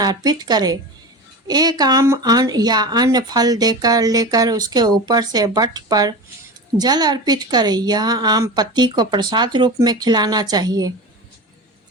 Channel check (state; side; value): normal; both; correlation 0.29